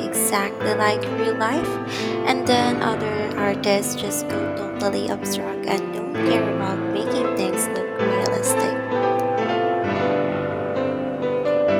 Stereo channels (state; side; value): identical; both; correlation 1.00